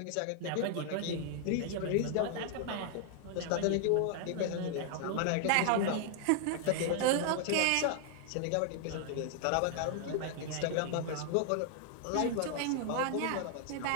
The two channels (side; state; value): both; different; correlation 0.00